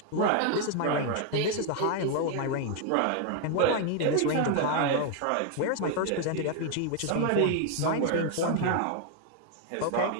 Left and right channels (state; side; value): different; both; correlation 0.00